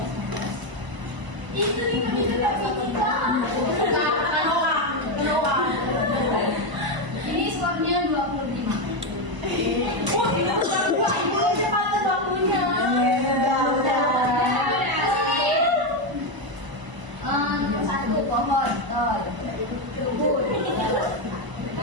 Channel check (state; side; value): late; left; 1.0 ms